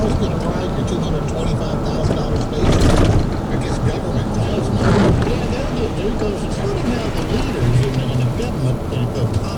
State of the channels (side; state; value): both; identical; correlation 1.00